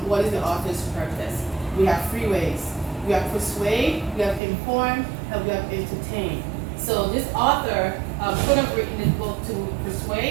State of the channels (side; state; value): left; drops out; at 4.4 s